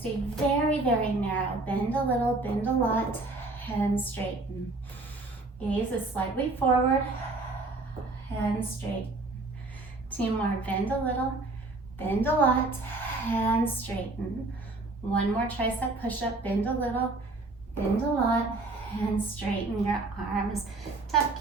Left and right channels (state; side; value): quieter; left; 3.2 dB